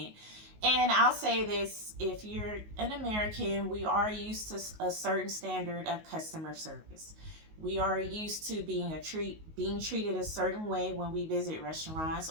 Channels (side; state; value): left; late; 19 ms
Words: And I'll say this, if you're an American, we are used to a certain standard of customer service. We are used to being treated a certain way when we visit restaurants